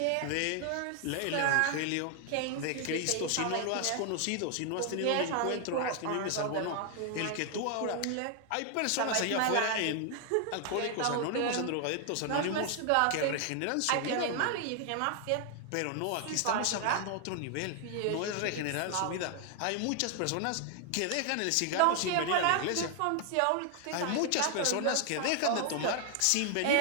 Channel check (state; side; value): different; both; correlation 0.00